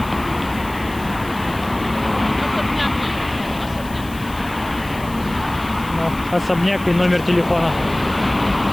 особняк и номер телефона.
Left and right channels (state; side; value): noise; left; hiss, 19 dB below the sound